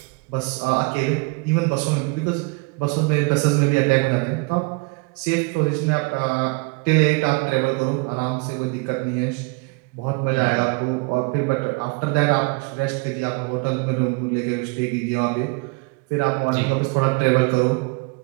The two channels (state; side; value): quieter; left; 29.7 dB